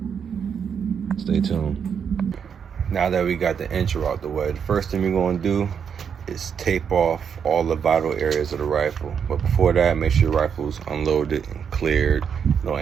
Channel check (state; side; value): quieter; left; 7.3 dB